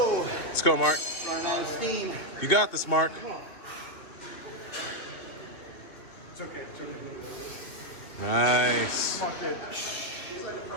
Let's go, Mark. Running out of steam. You got this, Mark. It's okay. It's okay. Nice.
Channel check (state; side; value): late; right; 2.4 ms